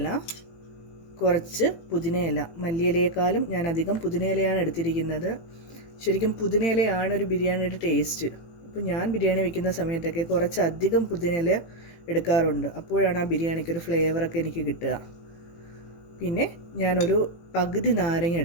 കുറച്ച് പുതിനയില. മല്ലിയിലയേക്കാളും ഞാൻ അധികം പുതിനയിലയാണ് എടുത്തിരിക്കുന്നത്. ശരിക്കും പുതിനയിലയാണ് ഒരു ബിരിയാണിയുടെ ടേസ്റ്റ്. അപ്പോൾ ഞാൻ ബിരിയാണി വെക്കുന്ന സമയത്തൊക്കെ കുറച്ചധികം പുതിനയില എടുക്കാറുണ്ട്. അപ്പോഴാണ് ആ ബിരിയാണിക്കൊരു ഫ്ലേവറൊക്കെ എനിക്ക് കിട്ടുക. പിന്നെ ഞാനൊരു പകുതി നാരങ്ങ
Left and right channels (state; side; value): late; right; 18 ms